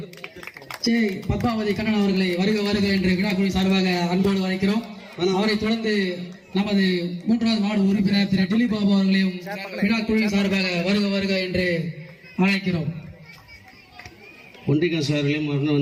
ஜே பத்மாவதி கண்ணன் அவர்களை வருக என்று விழாக்குழு சார்பாக அன்போடு அழைக்கிறோம். அவரை தொடர்ந்து நமது 3வது வார்டு உறுப்பினர் திரு டிலி பாபு அவர்களையும் விழாக்குழு சார்பாக வருக என்று அழைக்கிறோம். ஒன்றிய கவுன்சிலர்களையும் மரணம்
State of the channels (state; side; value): identical; both; correlation 1.00